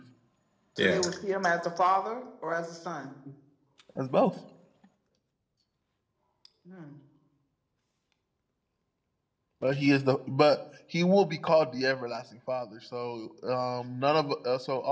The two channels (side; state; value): both; identical; correlation 1.00